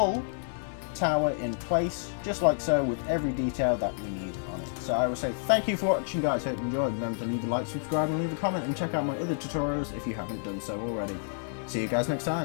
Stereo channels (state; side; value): silent; right; digital silence